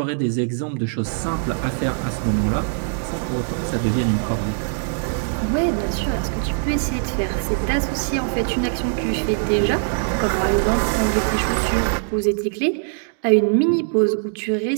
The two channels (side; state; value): left; silent; digital silence